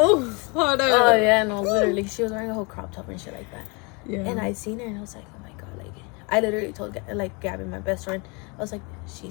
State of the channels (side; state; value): right; quieter; 30.6 dB